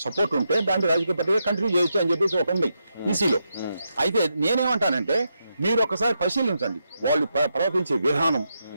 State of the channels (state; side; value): inverted; both; correlation -0.84